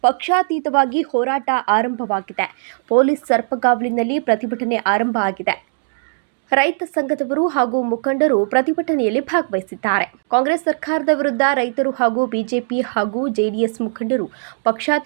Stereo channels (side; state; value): left; silent; digital silence